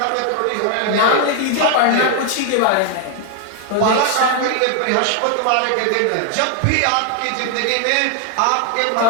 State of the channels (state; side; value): different; both; correlation 0.00